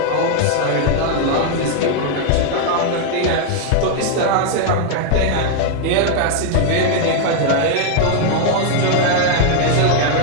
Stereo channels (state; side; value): different; both; correlation 0.00